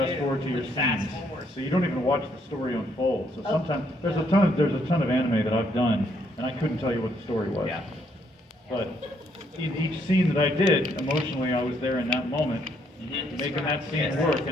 do. forward to your Fast scenes, forward. so you don't even watch the story unfold. So Oh. sometimes there's a ton of anime that I've done, and I couldn't tell you what the story was. Yeah. But in each scene that I did, emotionally, I was there in that moment, making that scene work,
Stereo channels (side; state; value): both; normal; correlation 0.71